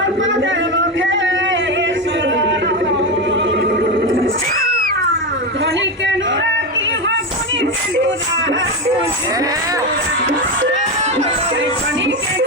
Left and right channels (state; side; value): normal; both; correlation 0.14